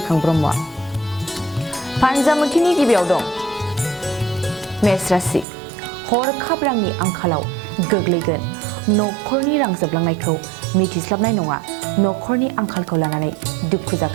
ब्रह्मआ। फान्जामुथिनि गिबियाव दं मेष राशि। हरखाब रांनि आंखालाव गोग्लैगोन। नखरनि रां जोबलांनायखौ मिथिस्लाबनाय नङा। नखरनि आंखालखौ लानानै दुखु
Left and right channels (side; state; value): left; drops out; at 5.5 s